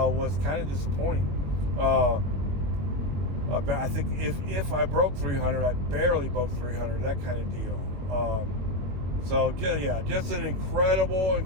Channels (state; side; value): late; left; 22 ms